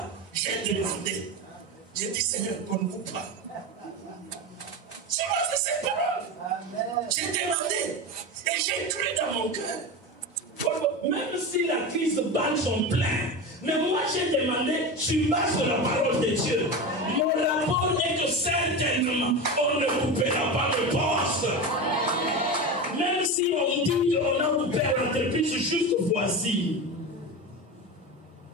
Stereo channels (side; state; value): both; normal; correlation 0.23